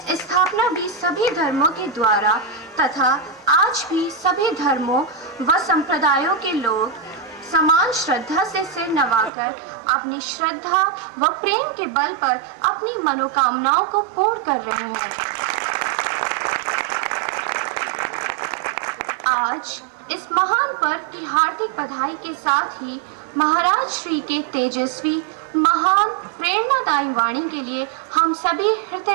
स्थापना भी सभी धर्मों के द्वारा तथा आज भी सभी धर्मों व संप्रदायों के लोग समान श्रद्धा से सिर नवाकर अपनी श्रद्धा व प्रेम के बल पर अपनी मनोकामनाओं को पूर्ण कर रहे हैं। आज इस महान पर्व की हार्दिक बधाई के साथ ही महाराज श्री के तेजस्वी महान प्रेरणादायी वाणी के लिए हम सभी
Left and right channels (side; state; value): left; drops out; at 9.3 s